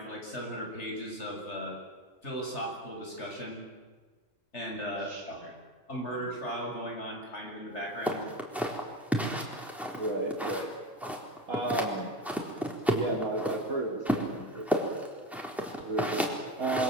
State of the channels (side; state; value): both; normal; correlation 0.28